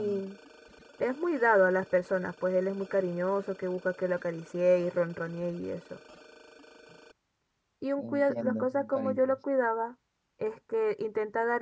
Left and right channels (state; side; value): identical; both; correlation 1.00